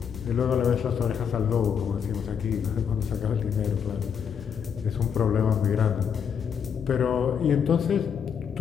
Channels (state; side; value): quieter; right; 7.4 dB